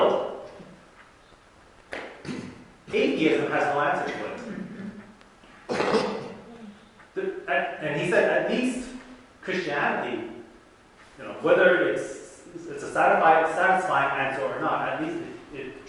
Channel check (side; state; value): both; identical; correlation 1.00